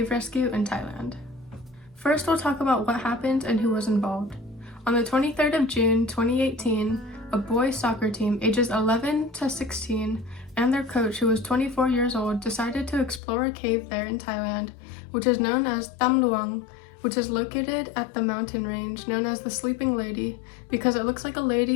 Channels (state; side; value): drops out; right; at 13.2 s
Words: Rescue in Thailand. First, we'll talk about what happened and who was involved. On the 23rd of June 2018, a boys soccer team ages 11 to 16 and their coach, who was 24 years old, decided to explore a cave there in Thailand, which is known as Tham Luang, which is located at the mountain range known as the Sleeping Lady because it looks like a